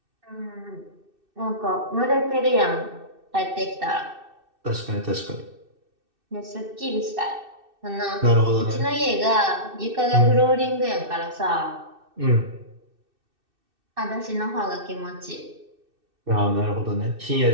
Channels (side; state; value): left; late; 2.6 ms